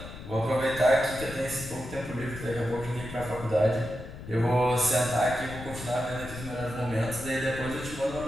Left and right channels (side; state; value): left; noise; rumble, 12 dB below the sound